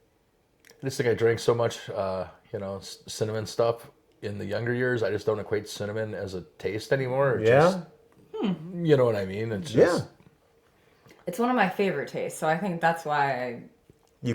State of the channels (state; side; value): identical; both; correlation 1.00